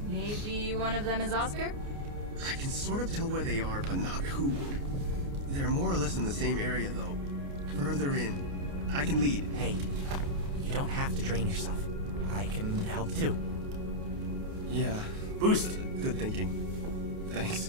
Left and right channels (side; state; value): left; late; 29 ms